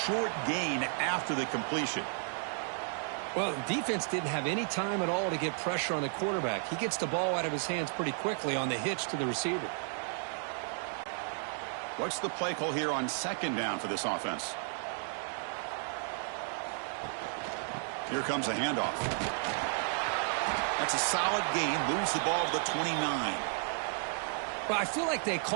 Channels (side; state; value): left; silent; 56 dB below the other